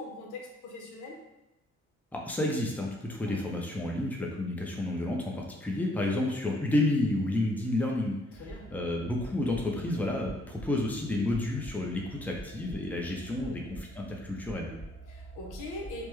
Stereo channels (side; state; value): both; normal; correlation 0.68